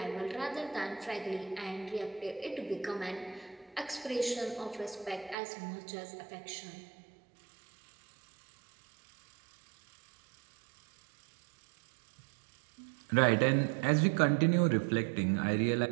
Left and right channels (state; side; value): drops out; left; at 5.4 s